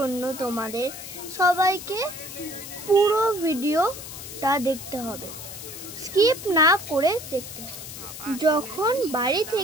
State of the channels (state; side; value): noise; left; hiss, 11 dB below the sound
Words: তোমাদের সবাইকে পুরো ভিডিওটা দেখতে হবে, স্কিপ না করে দেখতে হবে। যখন বাড়ি